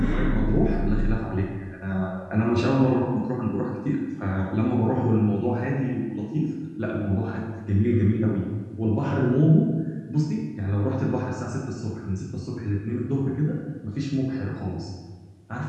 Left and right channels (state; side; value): identical; both; correlation 1.00